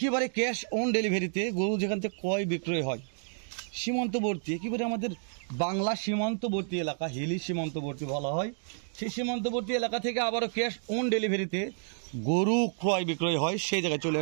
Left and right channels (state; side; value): silent; left; digital silence